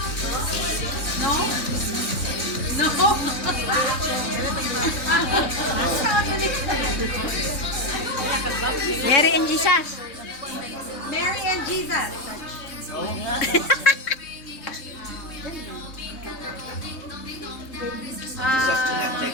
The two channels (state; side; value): late; right; 3.6 ms